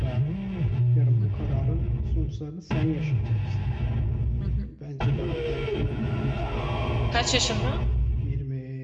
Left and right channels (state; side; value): identical; both; correlation 1.00